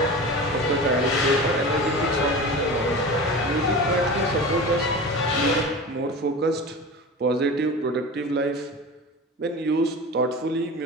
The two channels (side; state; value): both; normal; correlation 0.32